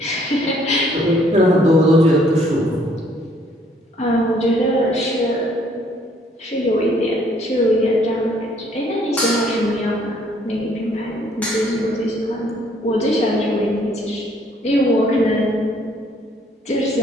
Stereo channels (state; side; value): normal; both; correlation 0.63